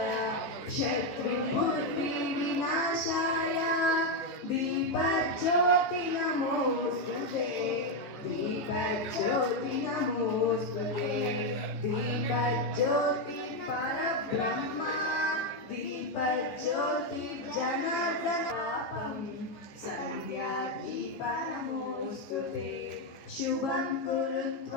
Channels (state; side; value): late; right; 14 ms